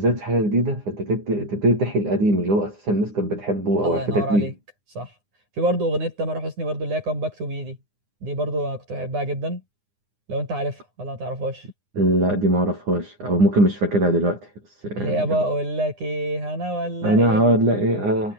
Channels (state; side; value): late; left; 9.8 ms